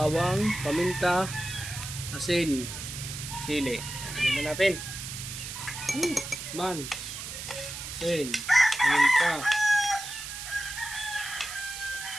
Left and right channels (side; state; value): right; noise; hiss, 8 dB below the sound